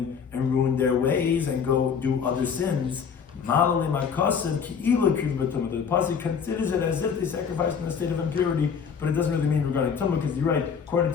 and ruin their ways and go do other sins. The Pasuk considers it as if they sacrificed in a state of impurity, but it doesn't really mean regarding Tumah, because you're right, according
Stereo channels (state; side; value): quieter; right; 6.6 dB